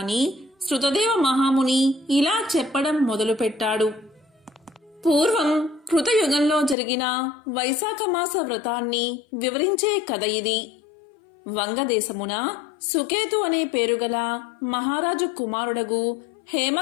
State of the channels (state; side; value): drops out; right; at 6.8 s